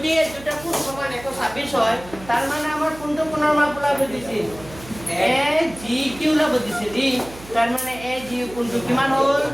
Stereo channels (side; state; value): right; noise; hum, 17 dB below the sound